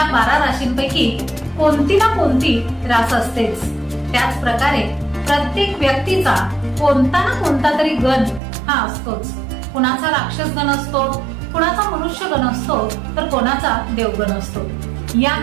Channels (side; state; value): left; drops out; at 8.4 s